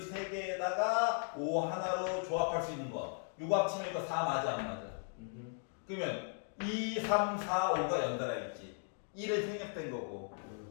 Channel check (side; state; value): right; silent; 53 dB below the other